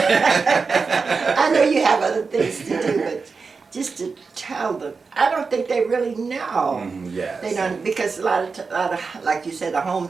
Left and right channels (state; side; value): quieter; left; 4.7 dB